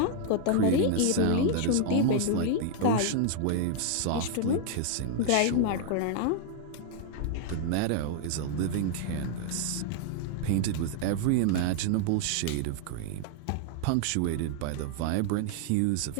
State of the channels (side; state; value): both; different; correlation 0.00